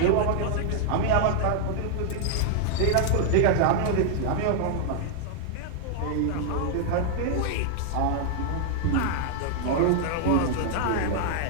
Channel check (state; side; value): different; both; correlation 0.00